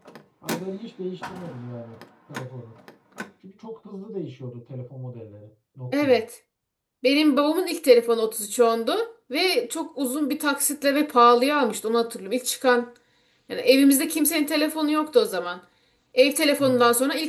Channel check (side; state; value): both; identical; correlation 1.00